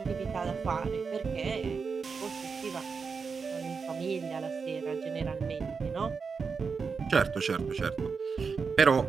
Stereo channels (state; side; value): quieter; left; 5.3 dB